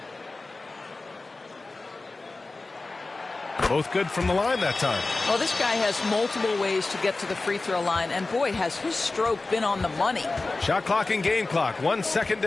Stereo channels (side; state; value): right; quieter; 3.4 dB